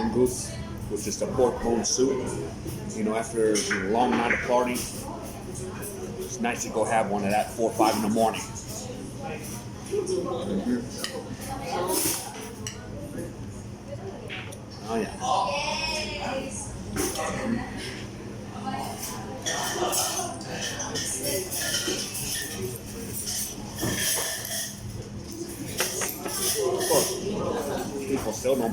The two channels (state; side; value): identical; both; correlation 1.00